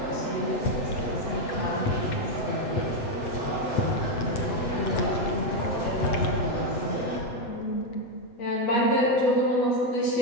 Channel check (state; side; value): late; right; 8.1 ms